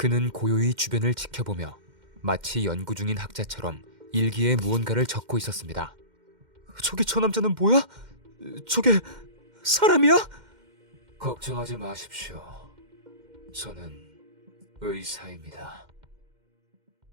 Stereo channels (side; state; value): left; late; 2.1 ms